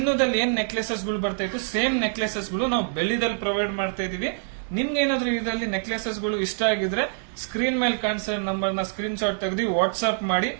ಏನ್ ನೆಕ್ಲೆಸಸ್ ಗಳು ಬರ್ತಾ ಇತ್ತು, ಸೇಮ್ ನೆಕ್ಲೆಸಸ್ ಗಳು ನಾವು ಬೆಳ್ಳಿದಲ್ಲಿ ಪ್ರೊವೈಡ್ ಮಾಡ್ತಾ ಇದೀವಿ. ನಿಮ್ಗೆ ಏನಾದ್ರೂ ಇದರಲ್ಲಿ ನೆಕ್ಲೆಸಸ್ ಗಳು ಇಷ್ಟ ಆಗಿದ್ರೆ ಸ್ಕ್ರೀನ್ ಮೇಲೆ ಕಾಣಿಸೋ ನಂಬರ್ ನ ಸ್ಕ್ರೀನ್ ಶಾಟ್ ತೆಗೆದು ವಾಟ್ಸ್ಆಪ್ ಮಾಡಿ.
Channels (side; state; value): left; silent; digital silence